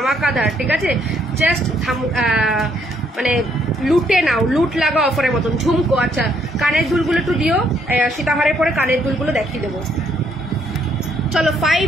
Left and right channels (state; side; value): normal; both; correlation 0.69